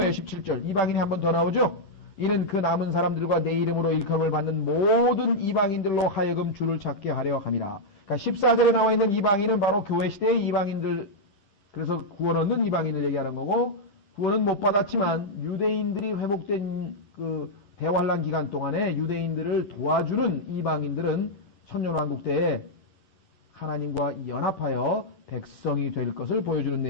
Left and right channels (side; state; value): right; late; 10 ms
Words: 17절, 이방인이 한 번 더 나오죠. 이는 그 남은 사람들과 내 이름으로 일컬음을 받는 모든 이방인들로 하여금 주를 찾게 하려 함이라. 그러니까 14절에 나와 있는 이방인은 바로 교회 시대의 이방인들, 그래서 구원 얻는 이방인을 얘기하는 거고, 구원은 못 받았지만 유대인들이 회복된 그 대환란 기간 동안에 유대인들을 도와주는 이방인들은 천년왕국 때에 하나님과 연합하여 백성이 될 것을 보여주는